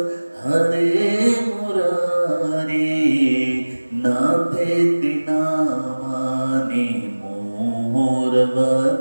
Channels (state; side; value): inverted; both; correlation -1.00